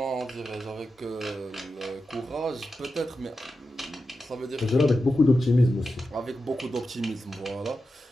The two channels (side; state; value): both; normal; correlation 0.90